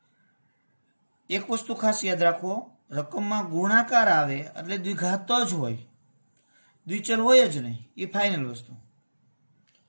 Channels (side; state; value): both; inverted; correlation -1.00